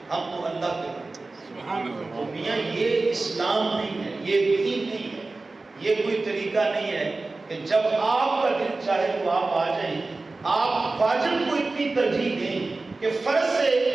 ہم تو اللہ کے بندے. تو میاں یہ اسلام نہیں ہے، یہ دین نہیں ہے، یہ کوئی طریقہ نہیں ہے کہ جب آپ کا دل چاہے تو آپ آ جائیں. آپ واجب کو اتنی ترجیح دیں کہ فرض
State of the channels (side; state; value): left; quieter; 3.4 dB